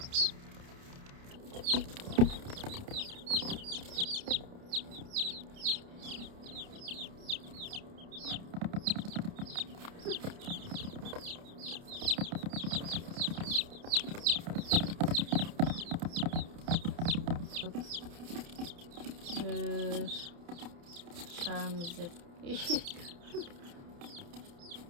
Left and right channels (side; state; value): left; late; 29 ms